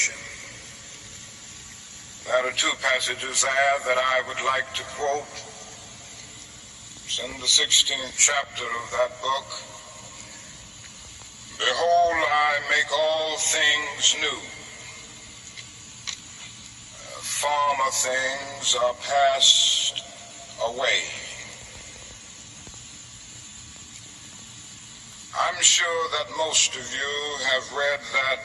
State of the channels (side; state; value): both; identical; correlation 1.00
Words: There are two passages there that I would like to quote. It's in the 16th chapter of that book. Behold, I make all things new. Former things are passed away. I'm sure that most of you have read that